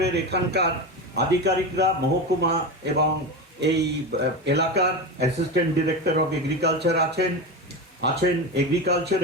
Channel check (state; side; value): normal; both; correlation 0.21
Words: এখানকার আধিকারিকরা, মহকুমা এবং এই এলাকার অ্যাসিস্ট্যান্ট ডিরেক্টর অফ এগ্রিকালচার আছেন